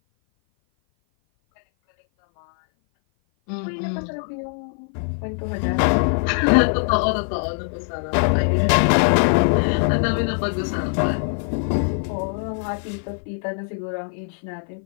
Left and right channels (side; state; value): right; silent; 57 dB below the other